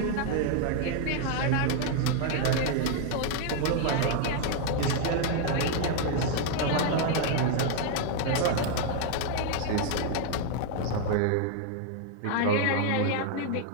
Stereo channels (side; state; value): both; different; correlation 0.00